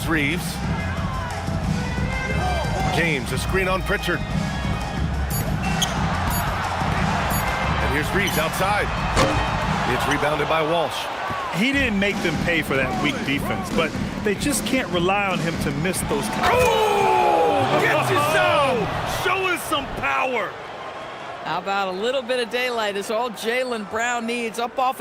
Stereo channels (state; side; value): identical; both; correlation 1.00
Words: Reeves. James, a screen on Pritchard. And here's Reeves outside. It's rebounded by Walsh. He didn't make them pay for that weak defense, but they just can't rely on him to miss those. Oh! Gets his zone! Show us some power! How about a little bit of daylight is all Jaylen Brown needs, up off